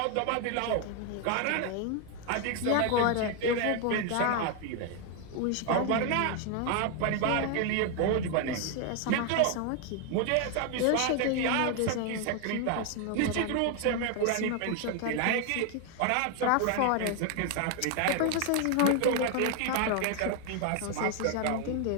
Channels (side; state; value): both; different; correlation 0.01